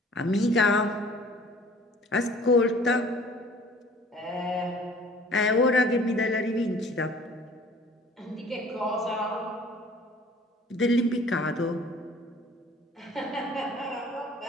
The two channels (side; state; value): both; normal; correlation 0.51